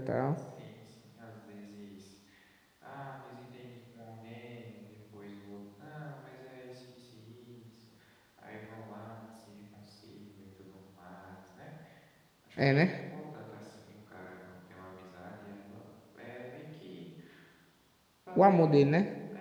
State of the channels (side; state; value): both; identical; correlation 1.00